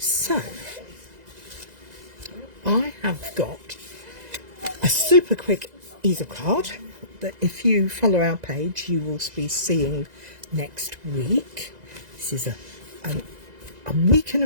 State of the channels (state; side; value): late; left; 2.0 ms